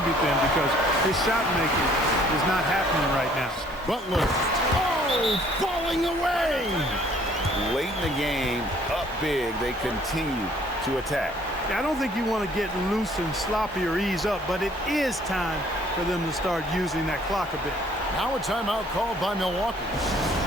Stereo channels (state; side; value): normal; both; correlation 0.59